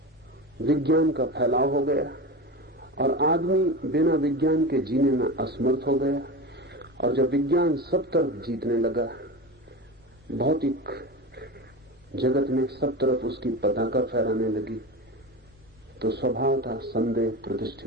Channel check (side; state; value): both; normal; correlation 0.25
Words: विज्ञान का फैलाव हो गया, और आदमी बिना विज्ञान के जीने में असमर्थ हो गया, और जब विज्ञान सब तरफ जीतने लगा, भौतिक जगत में सब तरफ उसकी पताका फहराने लगी, तो स्वभाव था संदेह